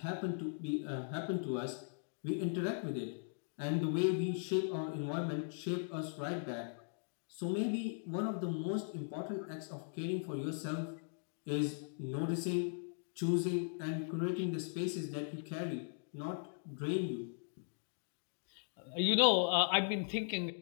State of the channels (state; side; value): silent; right; digital silence